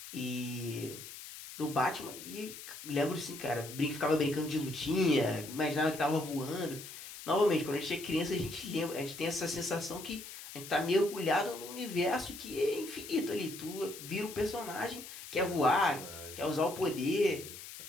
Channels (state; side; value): noise; left; hiss, 12 dB below the sound